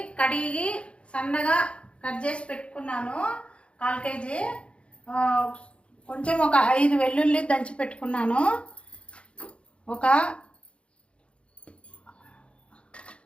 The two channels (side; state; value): right; late; 0.059 ms